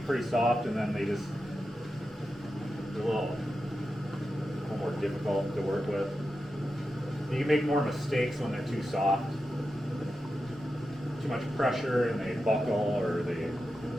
pretty soft, and then they're a little more difficult to work with. You can make more mistakes when they're too soft. Too much pressure and they buckle or they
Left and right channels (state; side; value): normal; both; correlation 0.90